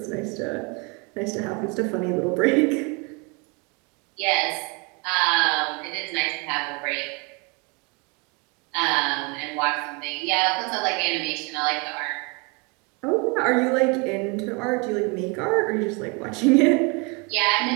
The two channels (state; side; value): quieter; left; 30.5 dB